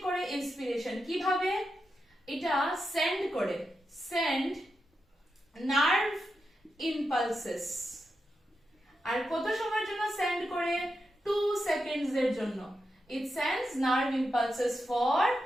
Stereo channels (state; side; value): normal; both; correlation 0.87